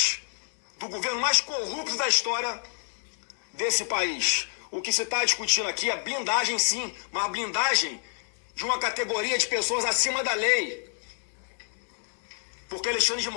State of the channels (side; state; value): right; silent; digital silence